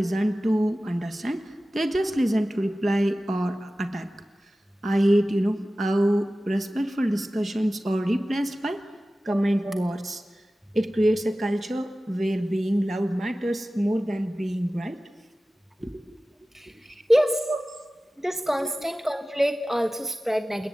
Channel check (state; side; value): normal; both; correlation 0.96